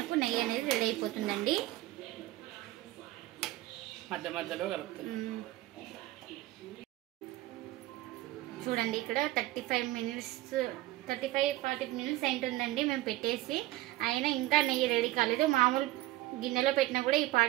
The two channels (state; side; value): quieter; left; 16.8 dB